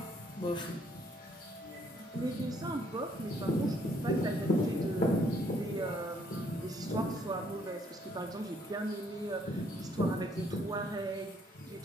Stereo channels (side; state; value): both; normal; correlation 0.67